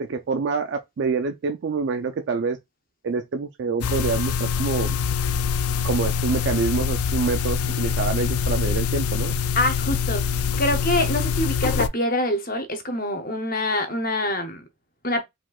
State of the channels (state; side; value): normal; both; correlation 0.21